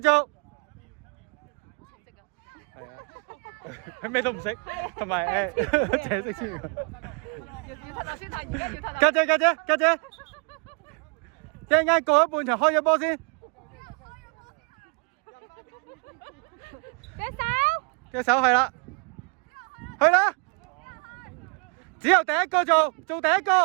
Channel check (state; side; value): quieter; left; 35.7 dB